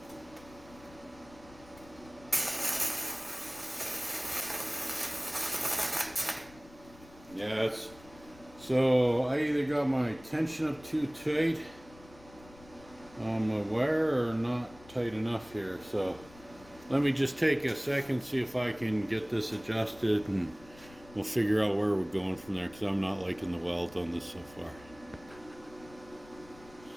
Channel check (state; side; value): noise; left; rumble, 22 dB below the sound